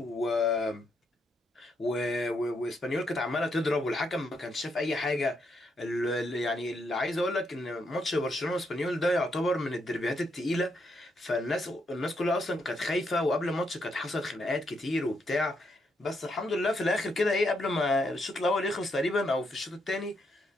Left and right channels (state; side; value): normal; both; correlation 0.78